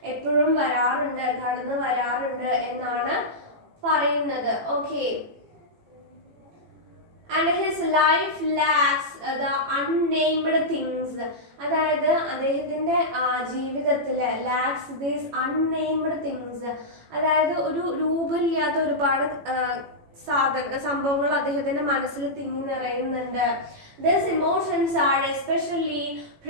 എപ്പോഴും കടന്നു വരാറുണ്ട് എന്നാണ് പറയുന്നത്. Okay, and his life lacks the unnamed things. അതായത് അദ്ദേഹത്തിൻ്റെ ജീവിതത്തിൽ ലാക്സ് ദീസ് അൺനെയിംഡ് തിങ്സ്, അതായത് ഒരു രൂപമില്ലാത്ത ഒരുപാട് സംഭവങ്ങൾ അദ്ദേഹത്തിൻ്റെ മനസ്സിൽ തിങ്ങി നിറയുന്നുണ്ട്. These emotions are especially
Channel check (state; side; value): late; left; 18 ms